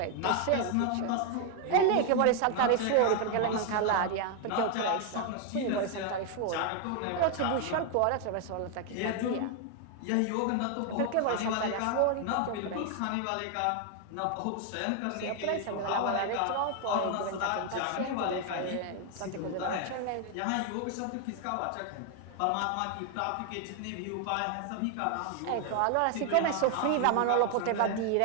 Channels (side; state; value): both; different; correlation 0.00